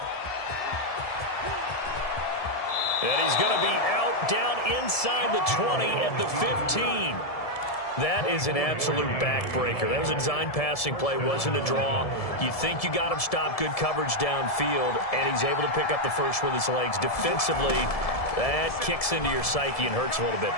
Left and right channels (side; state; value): right; late; 1.7 ms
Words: And he's going to be out down inside the 20 at the 15. That is an absolute backbreaker. That was a design passing play, wasn't a draw. You think you got him stopped, good coverage downfield, and he's able to pick up the first with his legs. Defensively, that kicks into your psyche and hurts a little bit,